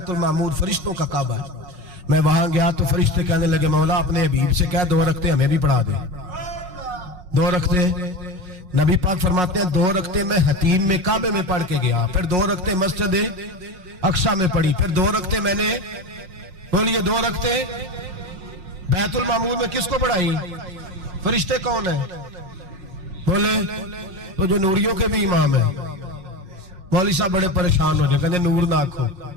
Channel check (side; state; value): left; late; 5.5 ms